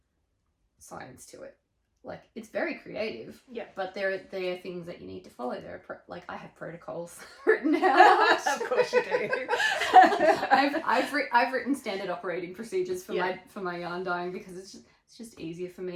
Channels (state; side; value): identical; both; correlation 1.00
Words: science to it. Like, it's very creative. Yeah. But there are things that you need to follow. There are like, I have protocols written out. Of course you do. I've written standard operating procedures for my yarn dyeing because it's just easier for